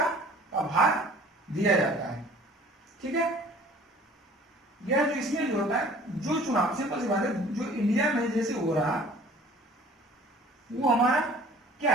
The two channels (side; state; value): both; normal; correlation 0.49